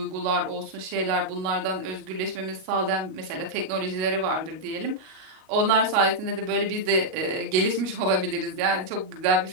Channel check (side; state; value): left; late; 38 ms